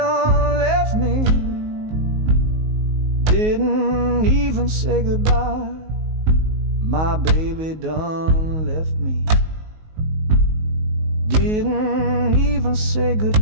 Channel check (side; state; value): left; late; 19 ms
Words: left me, didn't even say goodbye. My baby done left me, didn't even say